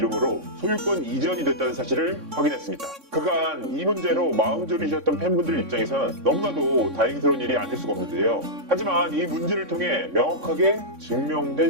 소유권 이전이 됐다는 사실을 확인했습니다. 그간 이 문제로 마음 졸이셨던 팬분들 입장에선 너무나도 다행스러운 일이 아닐 수가 없는데요. 하지만 이 문제를 통해 명확하게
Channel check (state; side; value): late; left; 3.6 ms